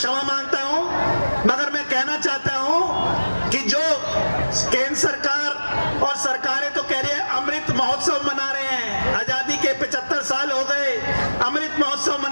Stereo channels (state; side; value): inverted; both; correlation -1.00